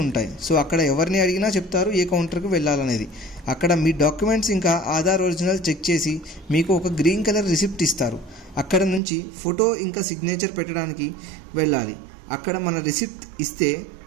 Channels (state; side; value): drops out; left; at 9.0 s